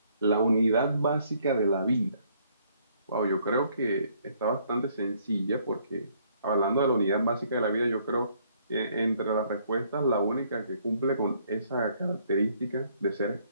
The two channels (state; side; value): inverted; both; correlation -0.66